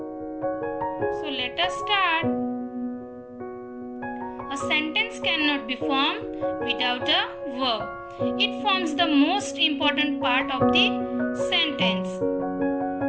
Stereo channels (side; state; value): both; identical; correlation 1.00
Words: So let us start. A sentence cannot be formed without a verb. It forms the most important part of the sentence.